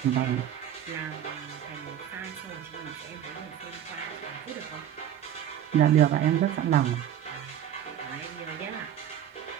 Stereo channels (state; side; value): quieter; left; 10.4 dB